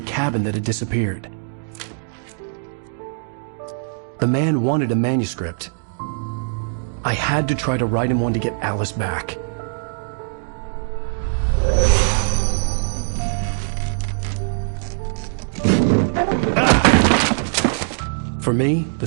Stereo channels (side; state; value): left; silent; 65 dB below the other